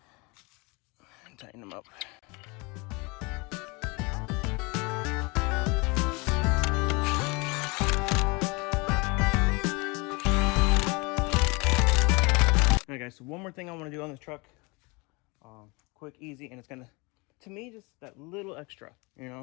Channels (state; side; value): quieter; right; 27.6 dB